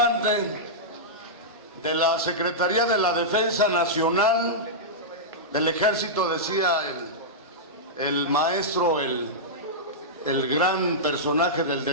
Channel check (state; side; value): normal; both; correlation -0.12